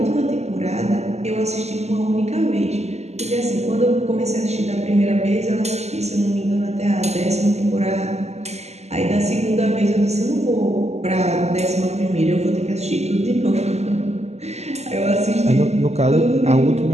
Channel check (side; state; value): left; late; 0.32 ms